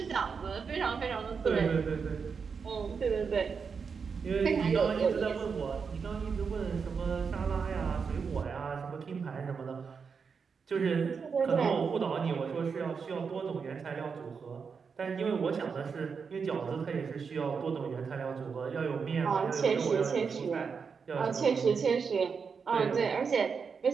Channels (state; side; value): quieter; left; 5.7 dB